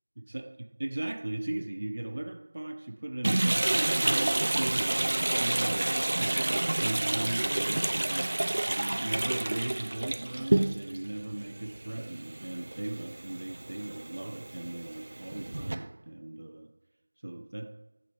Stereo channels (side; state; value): both; inverted; correlation -1.00